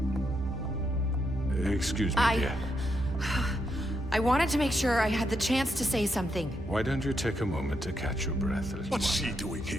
Excuse me, dear. I wanted to make sure I had the chance to say something. Why don't you take a moment to catch your breath, little What's one? she doing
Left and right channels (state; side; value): normal; both; correlation 0.81